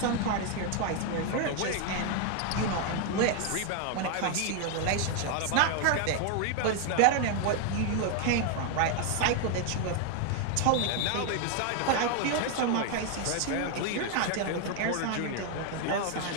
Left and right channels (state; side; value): different; both; correlation 0.01